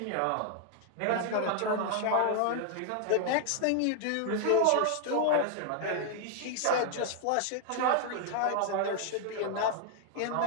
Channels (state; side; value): different; both; correlation 0.00